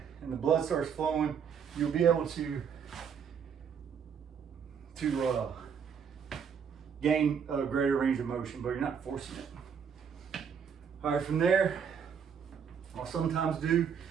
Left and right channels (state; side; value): quieter; left; 7.1 dB